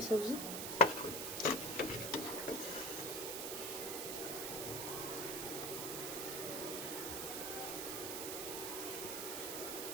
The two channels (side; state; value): right; noise; hiss, 2 dB below the sound